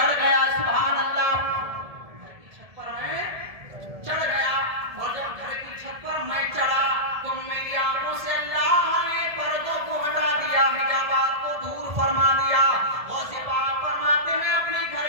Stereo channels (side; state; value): left; late; 1.7 ms